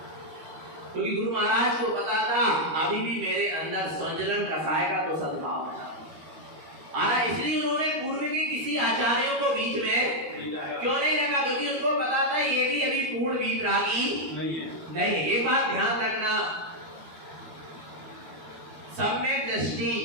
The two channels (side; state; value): left; late; 12 ms